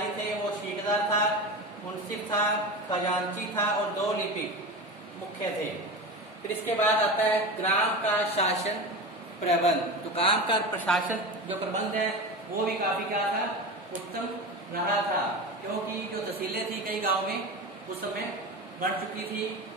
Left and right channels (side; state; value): both; normal; correlation 0.26